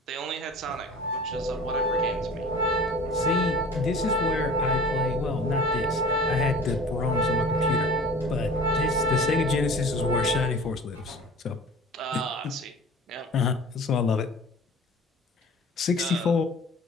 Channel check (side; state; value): both; normal; correlation 0.41